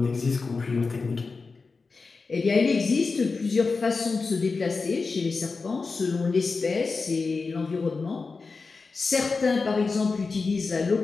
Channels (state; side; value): quieter; right; 4.3 dB